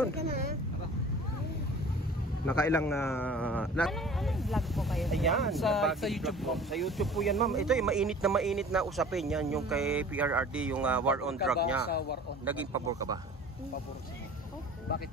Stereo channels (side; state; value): both; normal; correlation 0.44